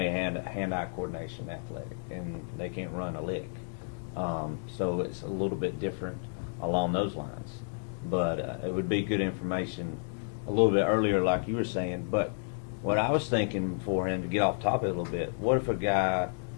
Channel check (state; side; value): silent; right; digital silence